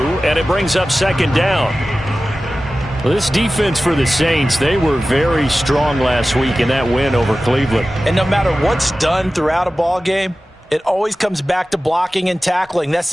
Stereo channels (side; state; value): both; normal; correlation 0.95